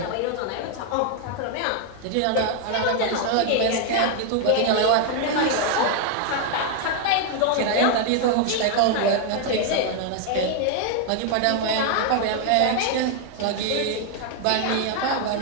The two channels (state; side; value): different; both; correlation 0.00